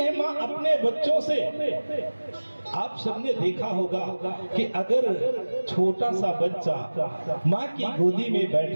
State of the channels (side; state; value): both; inverted; correlation -1.00